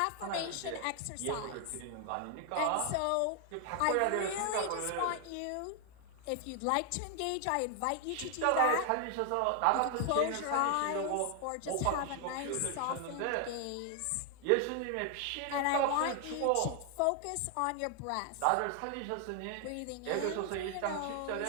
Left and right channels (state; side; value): different; both; correlation 0.00